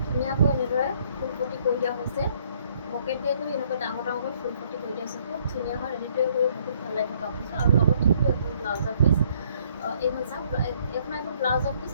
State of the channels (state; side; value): inverted; both; correlation -0.64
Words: ধুনীয়াকৈ এনেদৰে ফুলপটি কৰি দিয়া হৈছে। পকেটে কৰি এনেকৈ ডাঙৰ ডাঙৰকৈ ফুলপটি কৰি দিয়া হৈছে, খুব ধুনীয়া হয়। ৰেডি কৰি বহুত ভাল লাগিব কাপোৰযোৰ। আৰু লগত থাকিব এখন ব্লাউজৰ পিচ। এইখন চাওক, এইখন আহিব ব্লাউজৰ পিচ